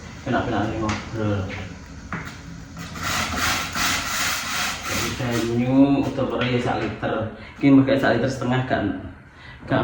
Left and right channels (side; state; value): both; identical; correlation 1.00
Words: kena-kena ngobrol. Banyu utawa ya 1 liter. Ki mbek 1,5 liter kan.